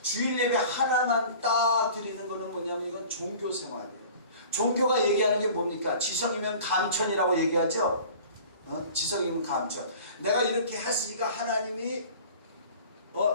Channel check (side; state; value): both; inverted; correlation -0.44